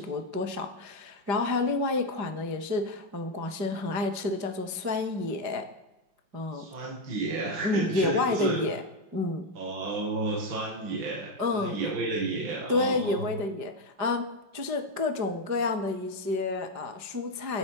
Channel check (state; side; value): late; left; 5.0 ms